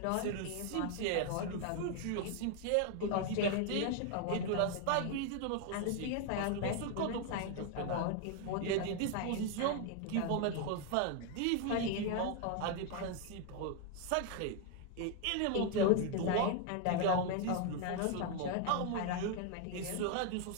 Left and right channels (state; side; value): different; both; correlation 0.01